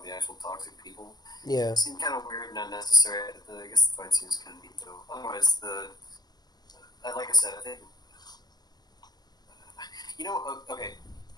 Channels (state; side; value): late; right; 0.20 ms